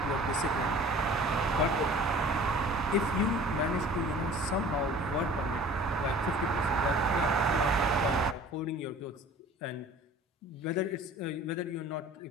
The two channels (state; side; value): normal; both; correlation 0.46